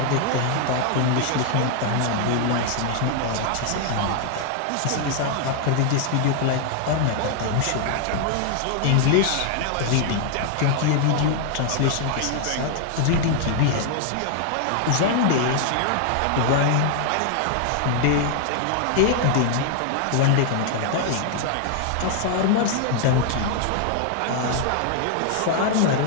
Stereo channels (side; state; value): both; different; correlation 0.00